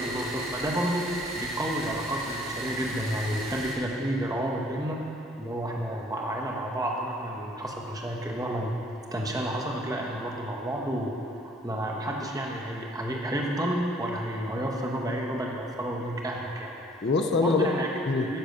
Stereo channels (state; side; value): normal; both; correlation 0.59